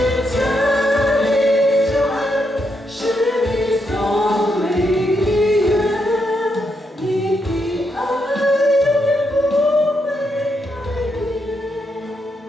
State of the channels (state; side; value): normal; both; correlation 0.80